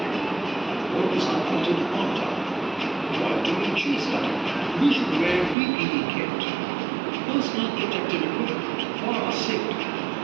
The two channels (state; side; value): drops out; left; at 5.6 s